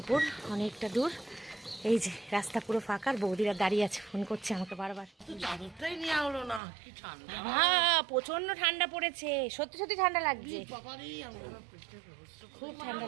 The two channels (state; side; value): drops out; left; at 6.6 s